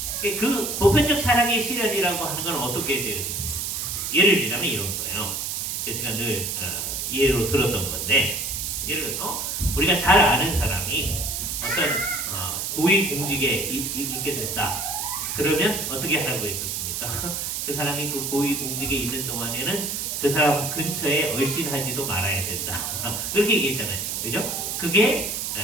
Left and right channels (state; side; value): noise; right; hiss, 3 dB below the sound